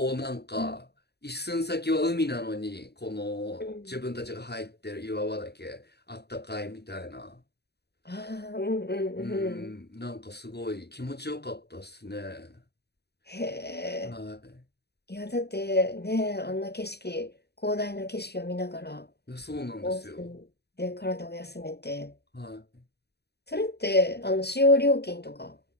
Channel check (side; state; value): right; late; 0.48 ms